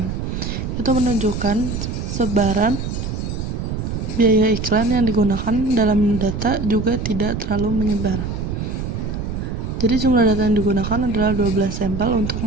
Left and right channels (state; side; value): noise; right; rumble, 4 dB below the sound